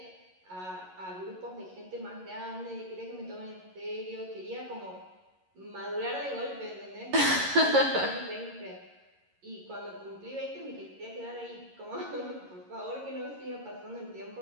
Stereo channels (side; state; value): left; late; 11 ms